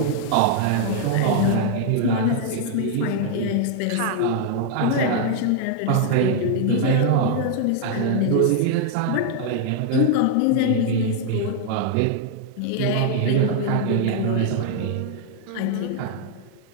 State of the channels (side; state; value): both; different; correlation 0.00